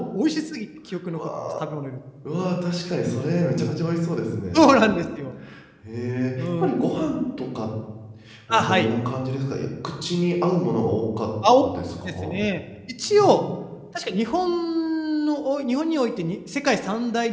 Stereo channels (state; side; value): identical; both; correlation 1.00